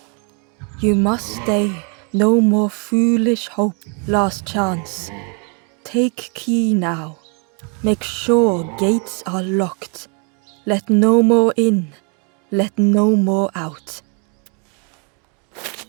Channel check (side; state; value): left; quieter; 36.7 dB